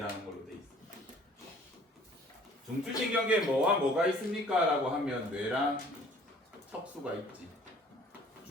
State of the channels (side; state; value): both; normal; correlation 0.53